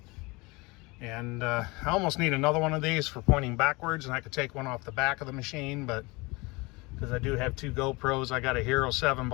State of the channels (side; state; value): right; quieter; 25.0 dB